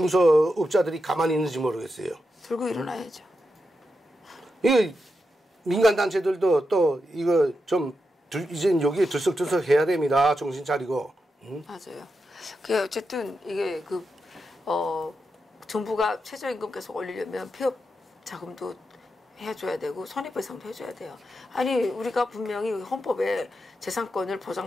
가만히 있는지 모르겠어요. 들고 일어나야죠. 이거 민간단체들도 또 이거 좀 이제 여기에 들썩들썩 해야 됩니다. 정신 차리고. 맞아요. 그 어쨌든 이게 정부가 최저임금 계속 올리려면 폐업 자금도 해줘야 되고 손해배상도 해줘야 돼요. 아니 우리가 분명히 헌법에 재산권을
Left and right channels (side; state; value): both; normal; correlation 0.87